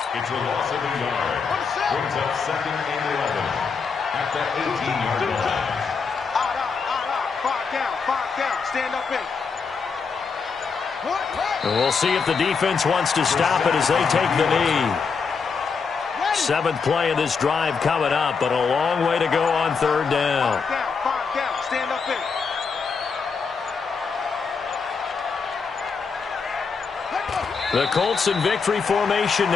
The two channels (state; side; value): quieter; right; 5.4 dB